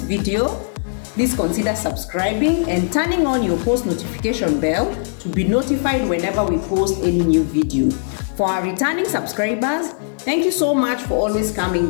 please consider subscribing and turning on your post notification bell to be notified whenever we post any new video. For our returning subscribers, thank you so much for always coming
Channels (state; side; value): silent; right; 66 dB below the other